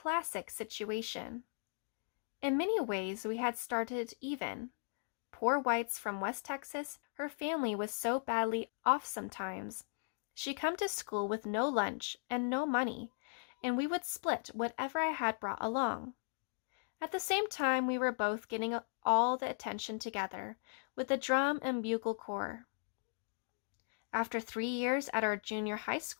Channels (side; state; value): right; silent; digital silence